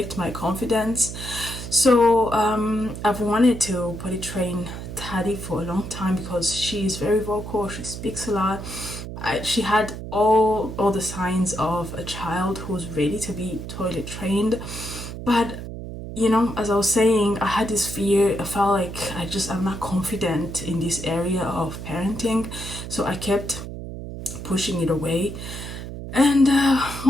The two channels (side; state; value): right; noise; hum, 9 dB below the sound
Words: my confidence. So I've wanted to potty train Taddy for a long time because she's very vocal, she speaks a lot. She had all the signs of a child who's ready to be toilet trained, but you know, as I was saying, I had this fear. I felt like I'm not confident in this area of parenting, so I kept pushing it away. And